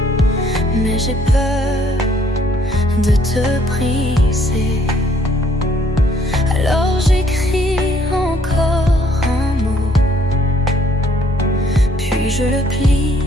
mais j'ai peur de te briser. Alors j'écris encore un mot, puis je le plie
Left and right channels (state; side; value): normal; both; correlation 0.65